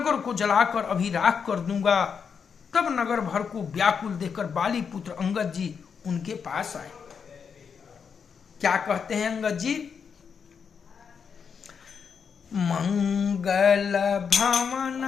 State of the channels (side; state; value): right; quieter; 6.5 dB